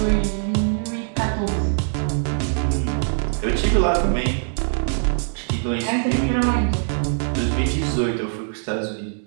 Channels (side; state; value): left; silent; digital silence